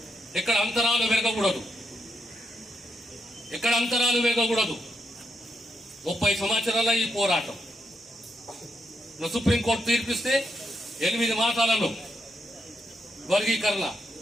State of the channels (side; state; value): both; normal; correlation 0.81